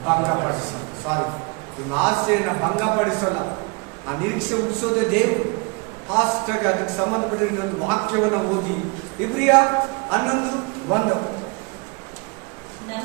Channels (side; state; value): left; quieter; 29.1 dB